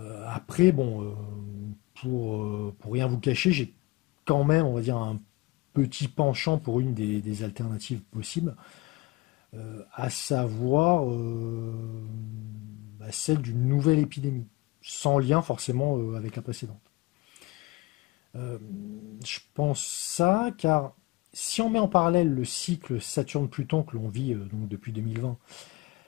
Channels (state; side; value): quieter; right; 21.1 dB